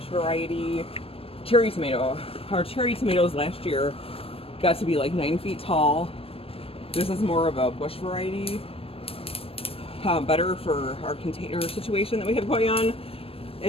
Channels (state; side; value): late; right; 0.28 ms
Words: variety cherry tomato. Our cherry tomatoes last year got to be like 9 feet tall. This is more of a Bush variety. Better for our container situation that we have going on.